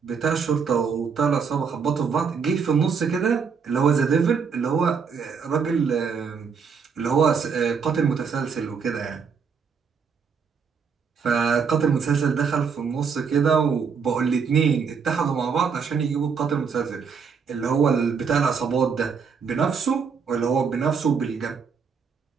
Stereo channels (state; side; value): quieter; left; 6.0 dB